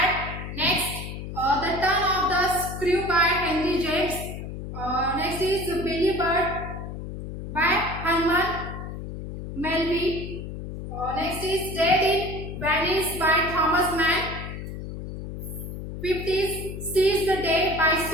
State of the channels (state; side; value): noise; left; hum, 8 dB below the sound